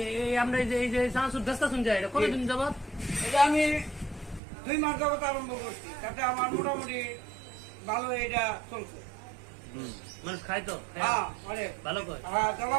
আমরা এই যে চানাচুর বেচতে শুনছি এটা কতদিন যাবত? এটা আমি 2 মাস যাবত আরম্ভ করছি, তাতে আমার মোটামুটি ভালো এটা চলছে। মানুষ খায় তো? হ্যাঁ, অনেক ভালো করে। হ্যাঁ,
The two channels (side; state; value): left; drops out; at 4.4 s